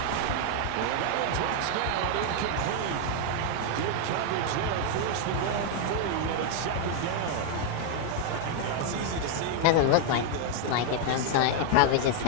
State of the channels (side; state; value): both; different; correlation 0.00